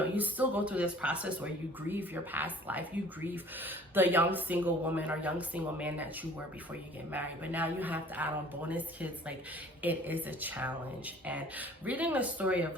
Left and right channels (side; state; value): both; normal; correlation 0.51